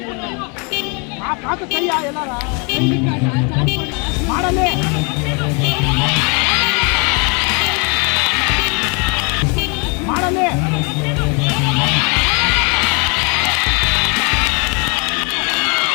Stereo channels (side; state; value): right; quieter; 33.5 dB